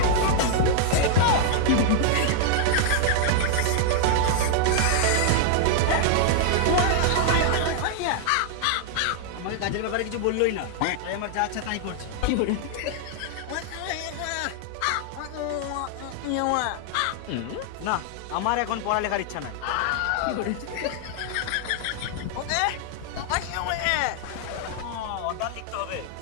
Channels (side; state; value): both; different; correlation 0.00